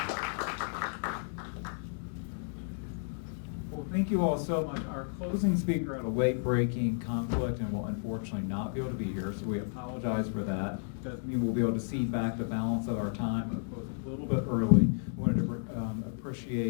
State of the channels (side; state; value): right; silent; digital silence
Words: Well, thank you all so much. Our closing speaker had a late-breaking conflict and will unfortunately not be able to be here, so we apologize for that. Doesn't mean we'll be able to cede back the balance of our time. We'll close a little bit early. We wanted to